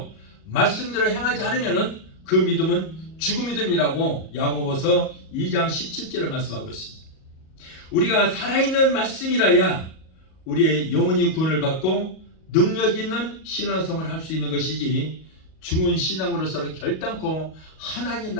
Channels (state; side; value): late; right; 38 ms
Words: 말씀대로 행하지 않으면 그 믿음은 죽은 믿음이라고 야고보서 2장 17절을 말씀하고 있습니다. 우리가 살아있는 말씀이라야 우리의 영혼이 구원을 받고 능력 있는 신앙생활을 할 수 있는 것이지 죽은 신앙으로서는 결단코 하나님